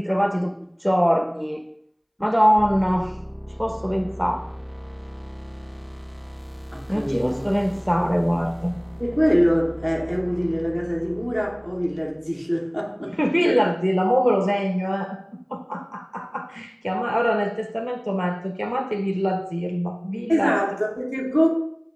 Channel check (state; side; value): identical; both; correlation 1.00